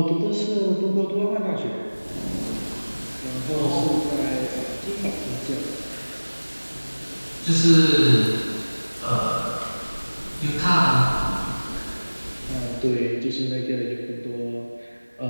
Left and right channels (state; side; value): inverted; both; correlation -1.00